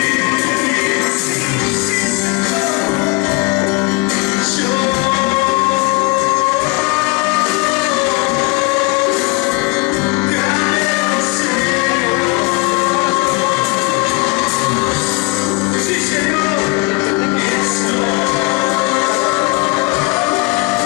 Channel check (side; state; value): right; quieter; 25.5 dB